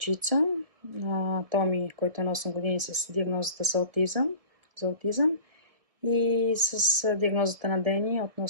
Томи, който е на 8 години с диагнозата за аутизъм и с диагнозата на Дени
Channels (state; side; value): late; left; 1.7 ms